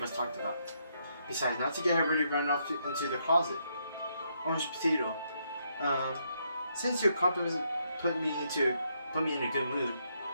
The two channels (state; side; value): inverted; both; correlation -0.76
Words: us talked about. Besides, not to get her ready to run off into the closet. Orange Potato. Since your compliments put me in a good mood,